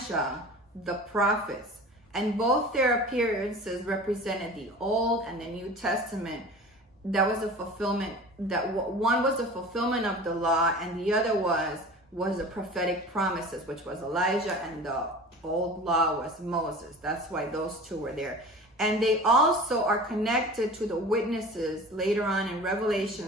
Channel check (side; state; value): both; normal; correlation 0.38